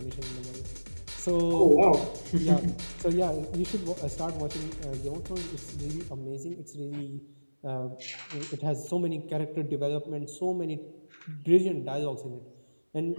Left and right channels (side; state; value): both; inverted; correlation -1.00